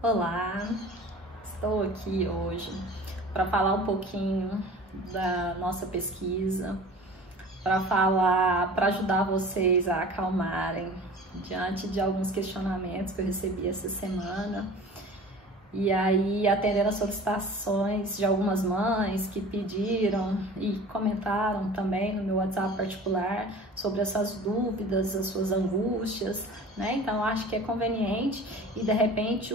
Olá, estou aqui hoje para falar um pouquinho da nossa pesquisa, para ajudar vocês a acalmarem diante de alguns questionamentos que eu recebi essa semana. E aí, atendendo as solicitações de algumas mães que pediram e comentaram também no meu WhatsApp particular sobre essas dúvidas, as suas angústias, né? Então, acho que é conveniente e, de repente,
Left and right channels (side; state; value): both; normal; correlation 0.41